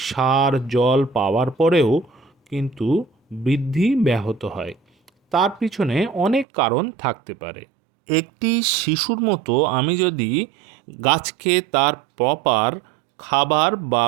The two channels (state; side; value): drops out; left; at 6.5 s